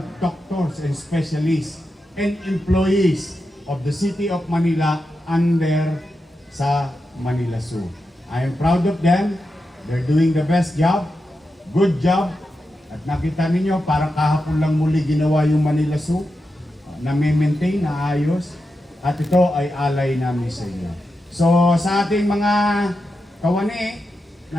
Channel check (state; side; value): normal; both; correlation 0.89